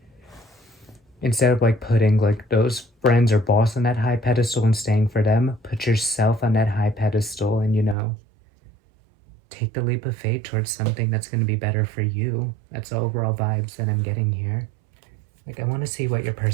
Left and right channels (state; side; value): drops out; left; at 8.0 s